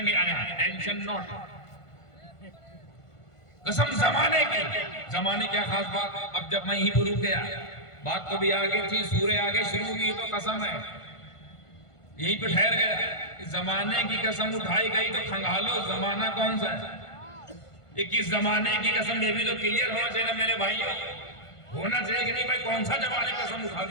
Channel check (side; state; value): right; late; 1.5 ms